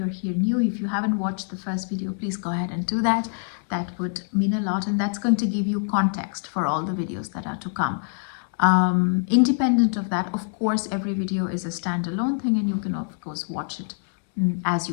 here new, if you haven't watched the first video, please go ahead and do that. That would mean a lot, and that's going to give you context for all the videos that are to come. Independent of that, of course, every video is a standalone thing, and you can of course watch it as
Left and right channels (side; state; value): right; silent; digital silence